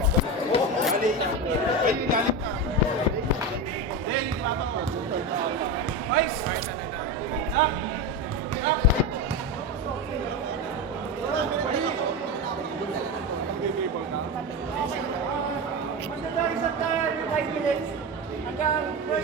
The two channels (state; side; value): normal; both; correlation 0.19